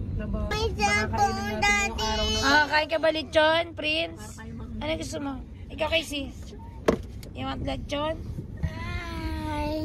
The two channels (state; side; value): identical; both; correlation 1.00